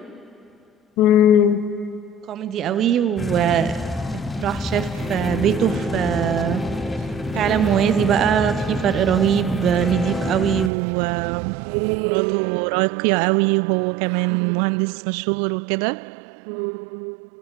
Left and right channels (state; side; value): drops out; left; at 10.7 s